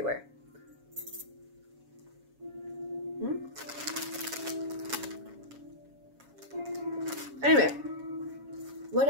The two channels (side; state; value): left; late; 7.2 ms